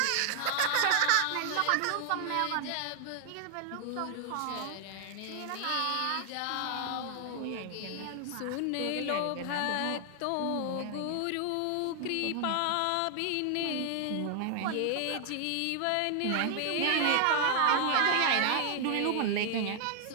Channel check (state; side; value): different; both; correlation 0.00